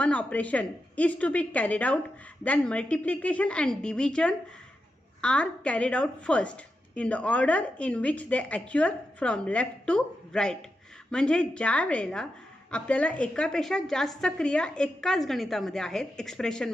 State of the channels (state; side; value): normal; both; correlation 0.88